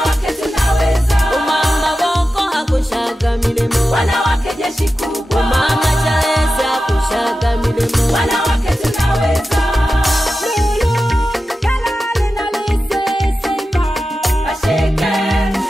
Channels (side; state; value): both; normal; correlation 0.93